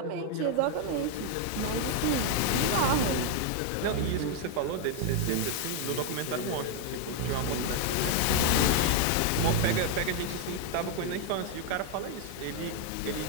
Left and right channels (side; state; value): both; different; correlation 0.00